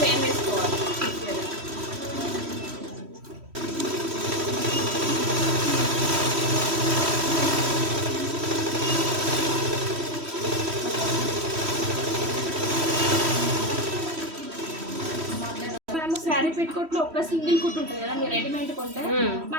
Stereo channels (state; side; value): late; left; 3.1 ms